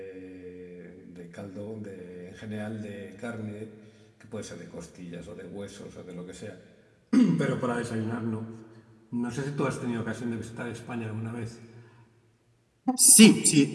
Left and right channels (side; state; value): both; identical; correlation 1.00